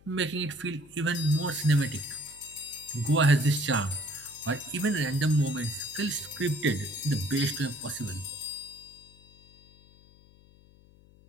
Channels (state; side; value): noise; left; hum, 26 dB below the sound